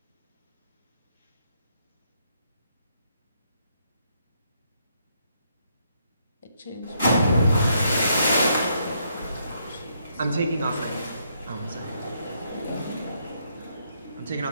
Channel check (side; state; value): both; inverted; correlation -0.74